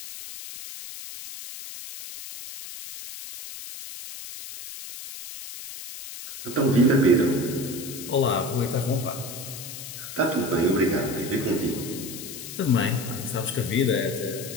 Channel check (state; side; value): noise; left; hiss, 11 dB below the sound